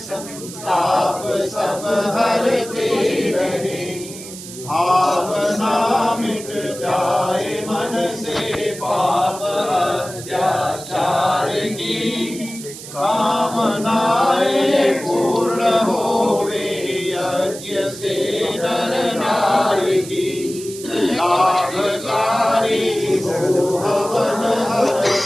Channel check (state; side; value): noise; right; hiss, 13 dB below the sound